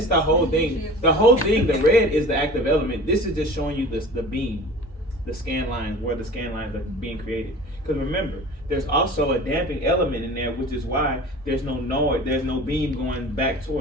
is the whole thing. The whole thing, the red is the active element. This is just showing you the beam, the scan lines, where the scan lines are being created. Because remember, there's also a damping element in there, which is why there's no beam going back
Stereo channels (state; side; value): normal; both; correlation 0.40